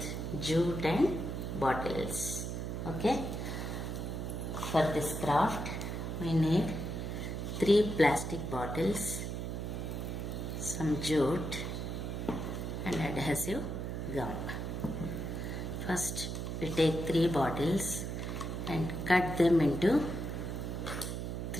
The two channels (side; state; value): right; noise; hum, 4 dB below the sound